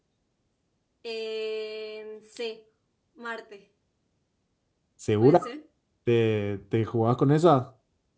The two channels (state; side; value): identical; both; correlation 1.00